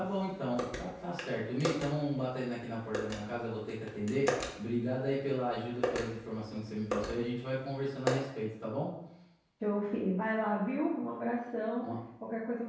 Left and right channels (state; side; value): identical; both; correlation 1.00